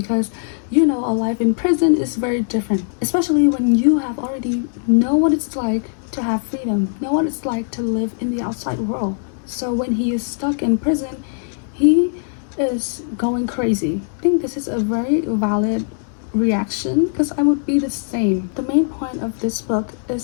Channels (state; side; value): silent; right; digital silence